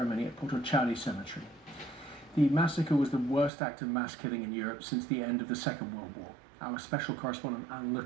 at Potocari Cemetery. The massacre was the worst act of mass killing in Europe since the end of the Second World War. Our special correspondent Alan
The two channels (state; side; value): drops out; left; at 3.5 s